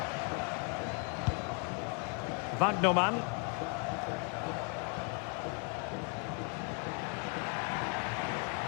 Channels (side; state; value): right; quieter; 36.6 dB